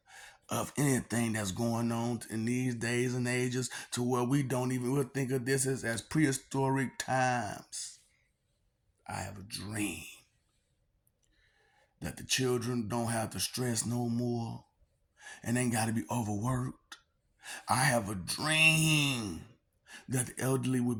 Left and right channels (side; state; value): both; identical; correlation 1.00